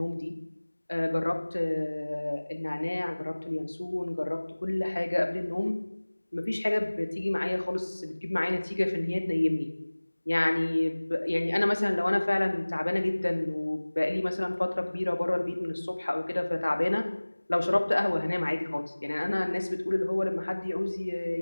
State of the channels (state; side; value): inverted; both; correlation -1.00